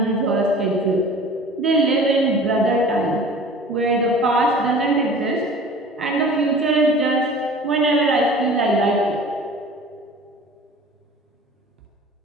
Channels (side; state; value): both; normal; correlation 0.43